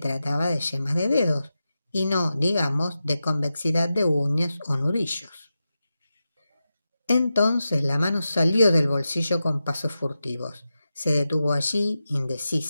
de yemas de dedos, y no, digamos, de convexidad de uñas o nudillos. Entonces la mano salió del bolsillo con pasos furtivos. Se detuvo allí,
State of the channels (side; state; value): both; inverted; correlation -0.92